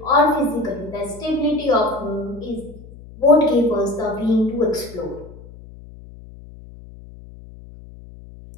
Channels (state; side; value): noise; left; hum, 18 dB below the sound